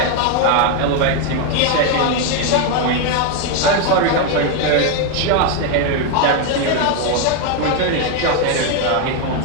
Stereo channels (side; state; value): both; different; correlation 0.01